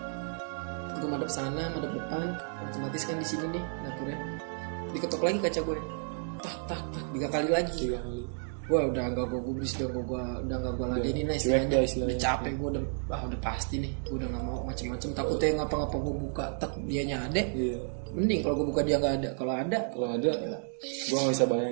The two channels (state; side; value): silent; left; 57 dB below the other